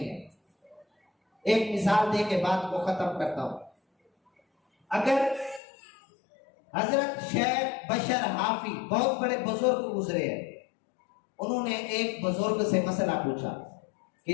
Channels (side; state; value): right; drops out; at 5.6 s